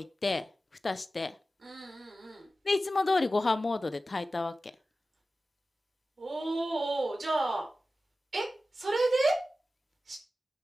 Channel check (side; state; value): both; normal; correlation 0.94